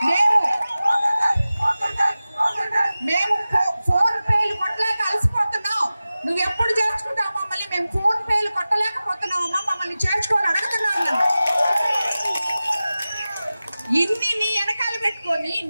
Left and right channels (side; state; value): both; inverted; correlation -0.96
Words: మేము ఫోన్ పేలు కొట్టలేక అలసిపోతున్నాం. నువ్వు ఎప్పుడు చేర్చుకుంటావు మమ్మల్ని? మేము ఫోన్ పేలు కొట్టలేకపోతున్నామమ్మా, మమ్మల్ని చేర్చుకోవాలని అడుగుతున్నాను. ఇన్ని నీ వెనకాల పెట్టుకొని